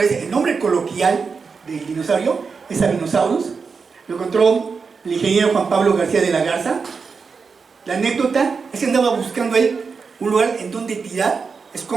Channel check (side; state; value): left; quieter; 5.2 dB